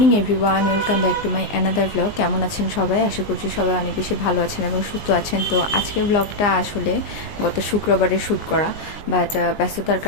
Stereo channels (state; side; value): late; right; 19 ms